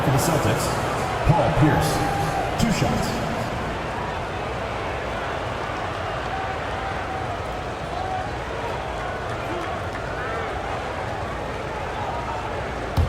for the Celtics, Paul Pierce. 2 shots.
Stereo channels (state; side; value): identical; both; correlation 1.00